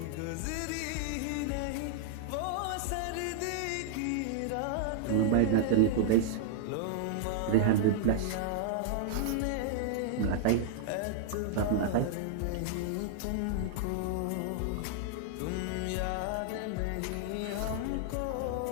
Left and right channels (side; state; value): both; different; correlation -0.01